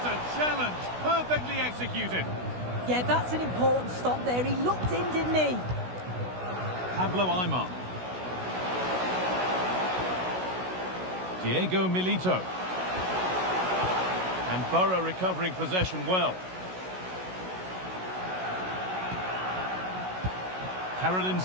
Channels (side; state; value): left; late; 16 ms